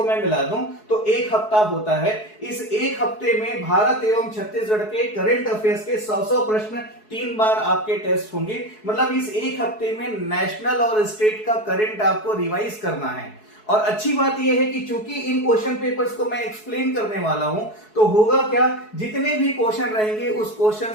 मैं मिला दूं तो एक हफ्ता होता है। इस एक हफ्ते में भारत एवं छत्तीसगढ़ के करंट अफेयर्स के 100 प्रश्न 3 बार आपके टेस्ट होंगे। मतलब इस एक हफ्ते में नेशनल और स्टेट का करंट आपको रिवाइज करना है। और अच्छी बात यह है कि चूंकि इन क्वेश्चन पेपर्स को मैं एक्सप्लेन करने वाला हूं तो होगा क्या, जितने भी क्वेश्चन रहेंगे उस क्वेश्चन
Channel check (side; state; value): right; late; 4.7 ms